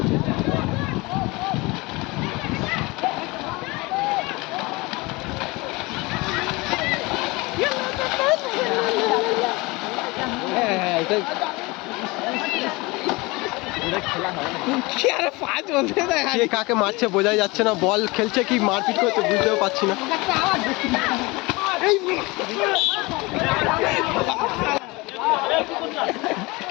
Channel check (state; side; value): quieter; right; 24.0 dB